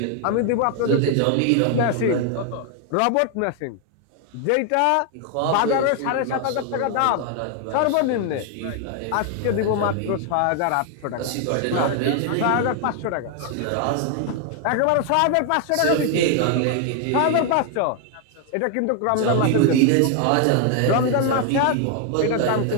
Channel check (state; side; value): different; both; correlation 0.00